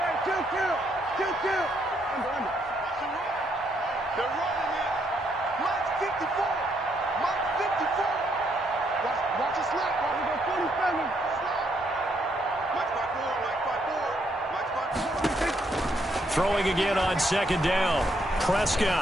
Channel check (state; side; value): normal; both; correlation 0.74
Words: Throwing again on 2nd down.